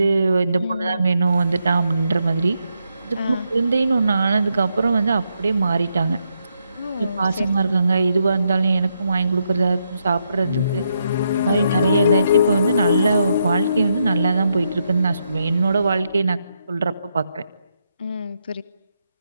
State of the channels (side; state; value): both; inverted; correlation -0.80